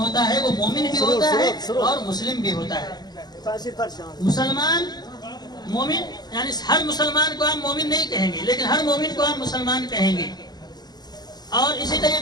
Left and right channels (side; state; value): right; late; 0.20 ms